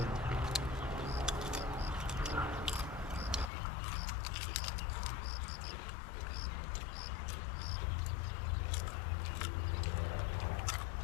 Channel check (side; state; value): right; drops out; at 3.5 s